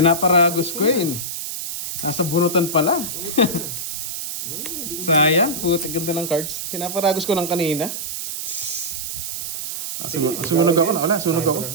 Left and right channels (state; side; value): noise; right; hiss, 5 dB below the sound